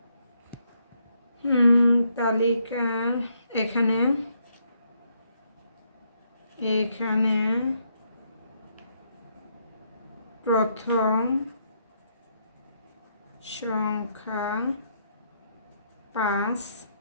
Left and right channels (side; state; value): both; inverted; correlation -0.74